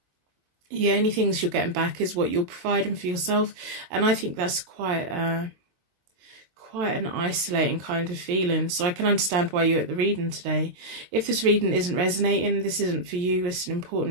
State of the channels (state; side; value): late; left; 22 ms